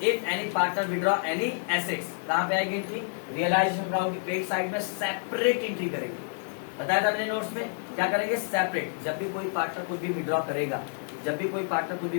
if any partner withdraw any assets, कहाँ पे आएगी एंट्री, रियलाइजेशन अकाउंट की क्रेडिट साइड में सेपरेट एंट्री करेंगे। बताया था मैंने नोट्स में, क्या करेंगे, सेपरेट। जब भी कोई पार्टनर कुछ भी विड्रॉ करेगा, जब भी कोई पार्टनर कुछ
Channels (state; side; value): silent; right; digital silence